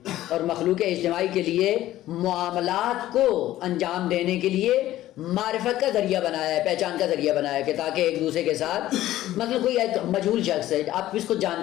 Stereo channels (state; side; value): quieter; right; 14.4 dB